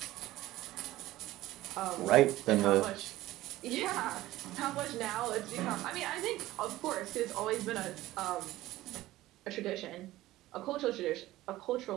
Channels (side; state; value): left; quieter; 16.3 dB